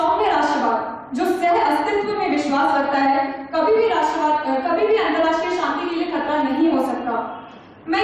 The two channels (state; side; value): identical; both; correlation 1.00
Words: राष्ट्रवाद जो सह अस्तित्व में विश्वास रखता है, कभी भी अंतर्राष्ट्रीय शांति के लिए खतरा नहीं हो सकता। मैं